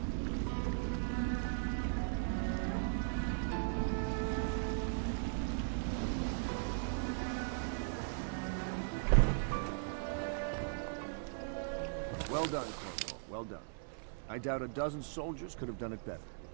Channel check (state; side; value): silent; left; digital silence